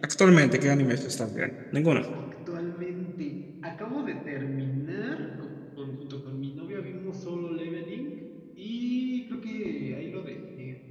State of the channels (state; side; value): identical; both; correlation 1.00